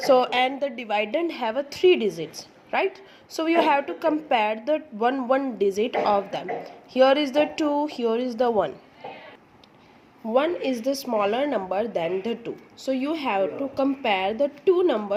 and the dividend have a 3 digits, right? So you have to compare the one digit of them. Here is the 2, here is the 1. 1 is the smaller number than the 2, so you have to compare the two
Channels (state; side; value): identical; both; correlation 1.00